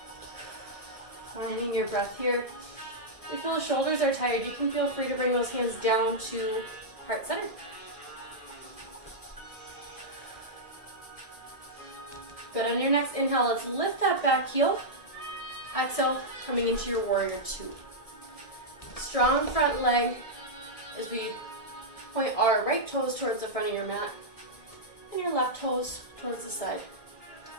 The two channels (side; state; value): right; late; 1.6 ms